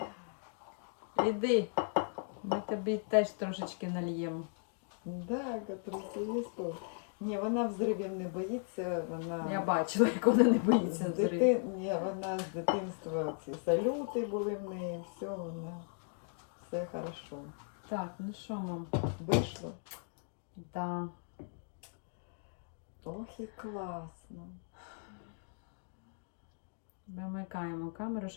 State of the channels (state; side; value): silent; right; 53 dB below the other